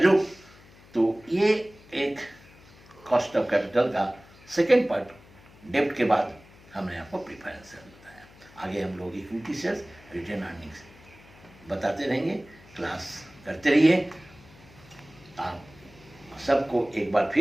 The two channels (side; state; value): left; noise; hum, 24 dB below the sound